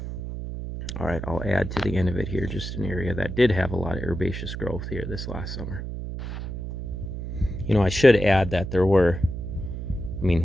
All right, I'll add to the end of it here just an area that did have a lot of herbaceous growth here this last summer. I should add that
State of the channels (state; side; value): noise; right; hum, 6 dB below the sound